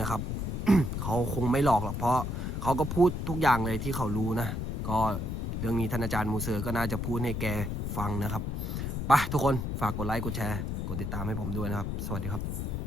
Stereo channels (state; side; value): noise; left; rumble, 2 dB below the sound